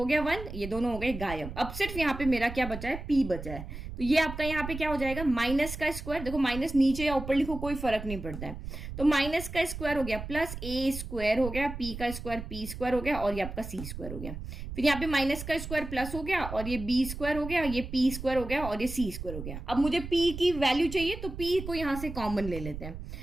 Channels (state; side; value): noise; right; rumble, 9 dB below the sound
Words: गया 1, ये दोनों हो गए गायब। अब सिर्फ यहाँ पे मेरा क्या बचा है, p बचा है। तो ये आपका यहाँ पे क्या हो जाएगा, माइनस का स्क्वायर, देखो माइनस नीचे या ऊपर लिखो कोई फर्क नहीं पड़ता है, तो माइनस का स्क्वायर हो गया प्लस a स्क्वायर हो गया, p का स्क्वायर p स्क्वायर हो गया और ये आपका c स्क्वायर हो गया। फिर यहाँ पे माइनस का स्क्वायर प्लस हो गया और ये b स्क्वायर हो गया, ये p स्क्वायर हो गया और ये c स्क्वायर हो गया। अब मुझे p की वैल्यू चाहिए तो p को यहाँ से कॉमन ले लेते हैं।